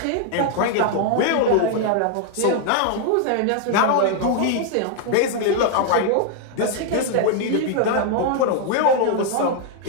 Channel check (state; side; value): different; both; correlation 0.00